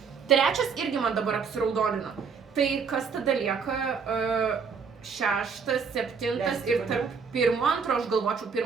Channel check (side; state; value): left; quieter; 5.8 dB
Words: 3 irgi man dabar apsiraudonina. Tai kas tada lieka 6, 7 ir tarp 1, 2 aš galvočiau,